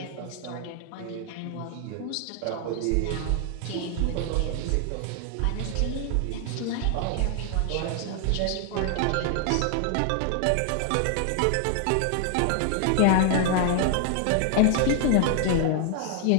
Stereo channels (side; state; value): both; different; correlation 0.00